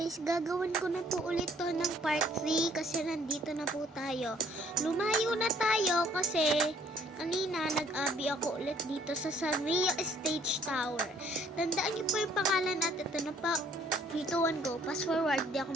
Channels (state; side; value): normal; both; correlation 0.61